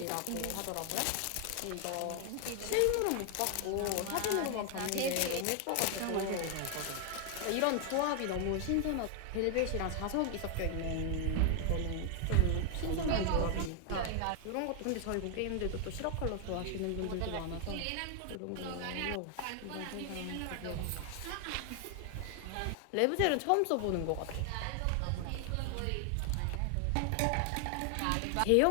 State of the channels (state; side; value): different; both; correlation 0.00